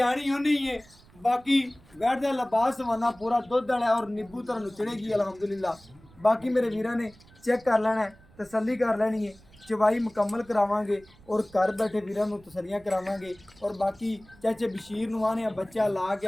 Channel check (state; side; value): noise; right; rumble, 26 dB below the sound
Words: होनी है। बाकी वैड़ दा लिबास हवाना पूरा दुध वाला और नींबू तरह नुचड़ेगी अल्हम्दुलिल्लाह। बाकी मेरे वीरां ने चेक कर लेना है, तसल्ली कर लेनी है, चवाई मुकम्मल करावांगे और घर बैठे वीरां नूं तसलियां करावांगे। और बाकी चाचे बशीर नूं आने बच्चा ला के